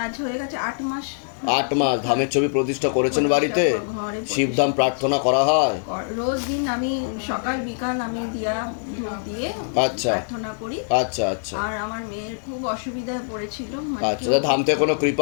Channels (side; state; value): right; silent; 63 dB below the other